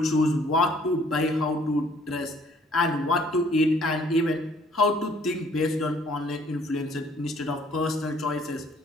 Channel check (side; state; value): both; normal; correlation 0.60